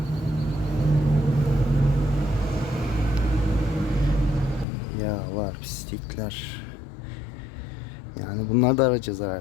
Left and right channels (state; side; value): drops out; right; at 4.7 s